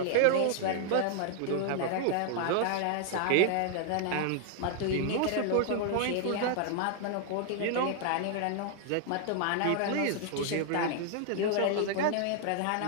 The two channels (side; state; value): both; different; correlation 0.00